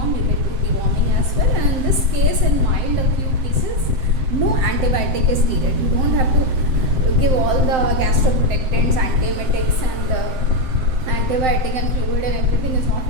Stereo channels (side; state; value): left; late; 7.7 ms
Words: you can do deworming as well. And in this case, in mild acute cases, no antibiotic is needed. You don't have to give all the gastroprotectants, antiemetics, and antibiotic and fluid and everything is not